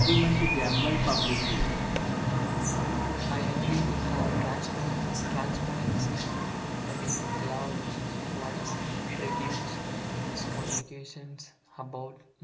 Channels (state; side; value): identical; both; correlation 1.00